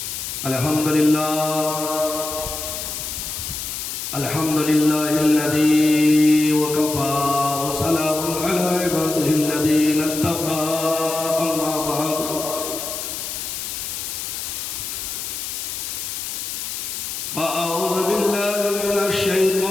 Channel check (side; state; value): left; noise; hiss, 5 dB below the sound